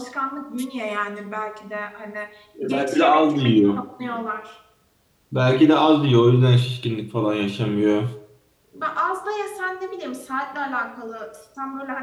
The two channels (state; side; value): identical; both; correlation 1.00